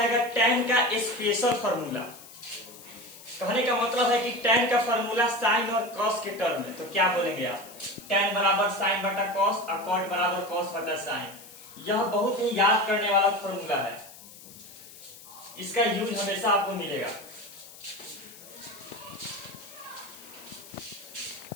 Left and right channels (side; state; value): left; noise; hiss, 18 dB below the sound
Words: टैन का स्पेशल फॉर्मूला, कहने का मतलब है कि टैन का फॉर्मूला साइन और कॉस के टर्म में, तो क्या बोलेंगे आप? टैन बराबर साइन बटा कॉस और कॉट बराबर कॉस बटा साइन। यह बहुत ही याद करने वाला फॉर्मूला है, इसका यूज हमेशा आपको मिलेगा।